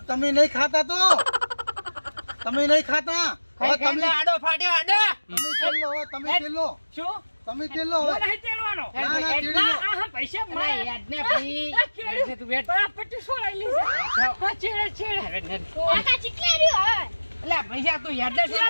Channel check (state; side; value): inverted; both; correlation -1.00